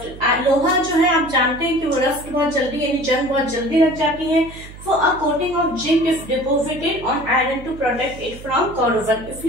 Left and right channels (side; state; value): right; noise; hum, 16 dB below the sound